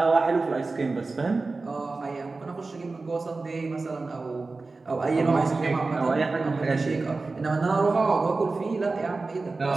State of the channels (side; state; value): left; quieter; 3.7 dB